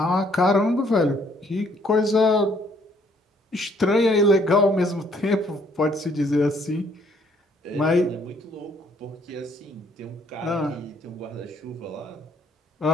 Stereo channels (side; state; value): both; normal; correlation 0.65